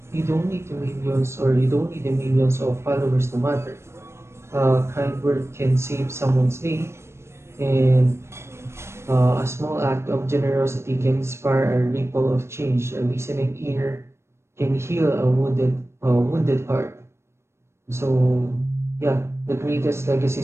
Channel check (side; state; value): left; late; 0.13 ms